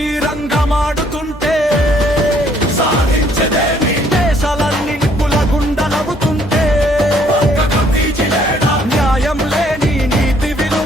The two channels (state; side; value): normal; both; correlation 0.64